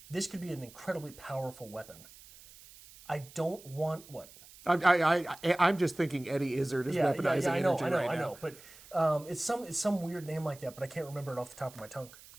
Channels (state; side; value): noise; right; hiss, 21 dB below the sound